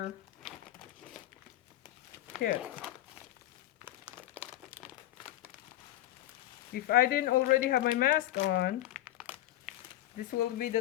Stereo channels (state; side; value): quieter; right; 14.3 dB